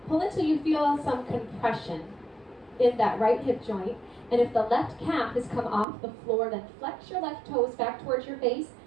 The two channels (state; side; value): drops out; left; at 5.9 s